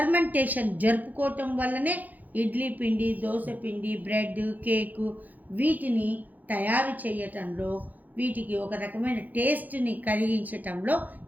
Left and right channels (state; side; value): late; left; 0.082 ms